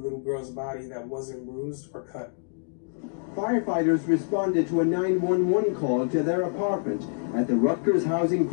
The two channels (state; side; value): silent; right; digital silence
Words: girl's body that wasn't bruised or cut. Firefighters responded to a 911 call to their apartment at the Rutgers Housing